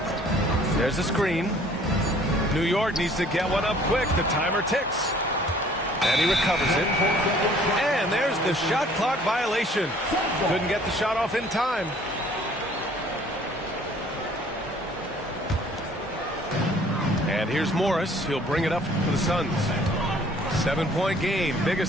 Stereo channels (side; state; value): both; normal; correlation 0.55